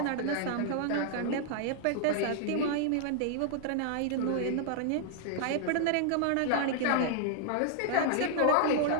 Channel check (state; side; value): different; both; correlation -0.01